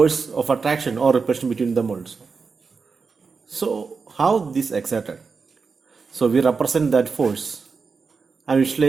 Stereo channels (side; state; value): left; quieter; 4.9 dB